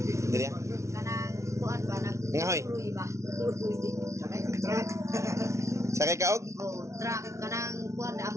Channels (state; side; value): late; left; 0.14 ms